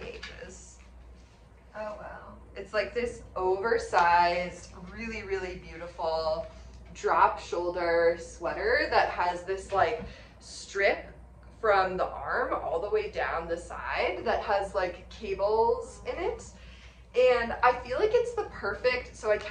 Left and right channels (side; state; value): both; identical; correlation 1.00